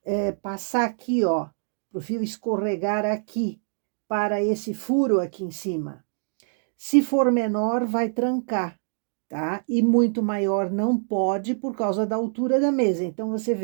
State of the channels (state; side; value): silent; left; digital silence